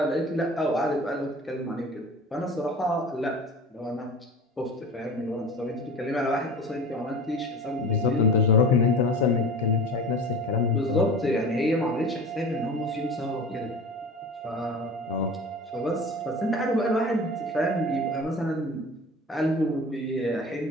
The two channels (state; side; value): normal; both; correlation 0.37